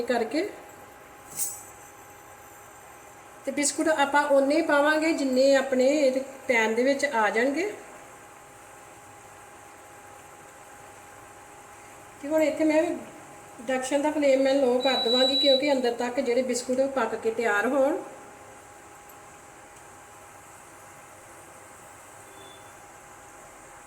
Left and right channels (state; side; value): identical; both; correlation 1.00